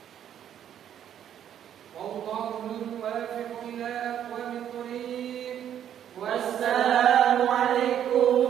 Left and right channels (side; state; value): left; quieter; 10.0 dB